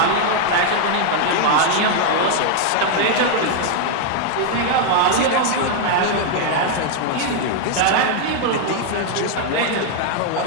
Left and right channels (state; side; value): different; both; correlation 0.00